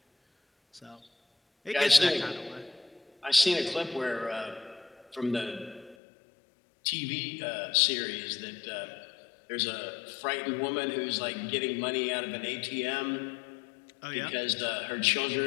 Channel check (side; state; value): right; drops out; at 6.0 s